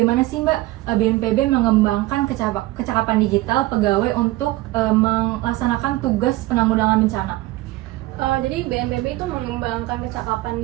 sih Mbak BNPB mengembangkan kecakapan digital pegawai untuk melaksanakan tugas penanggulangan bencana? Jadi BNPB itu mengembangkan kecakapan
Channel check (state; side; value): quieter; left; 18.4 dB